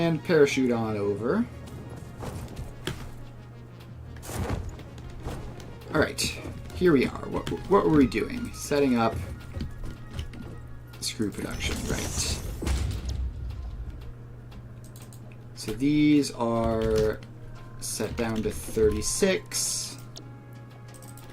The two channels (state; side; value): identical; both; correlation 1.00